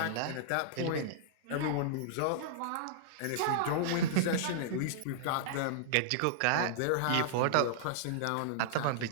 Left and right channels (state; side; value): different; both; correlation -0.02